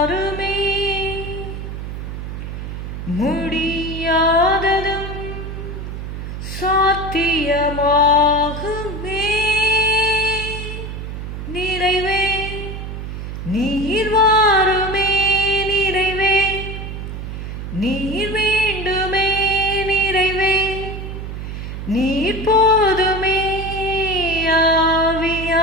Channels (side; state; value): right; noise; hum, 7 dB below the sound